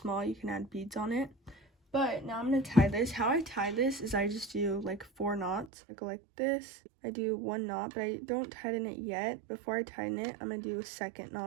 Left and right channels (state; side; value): drops out; left; at 5.7 s